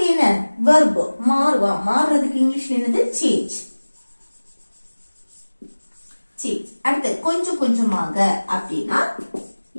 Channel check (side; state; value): both; inverted; correlation -1.00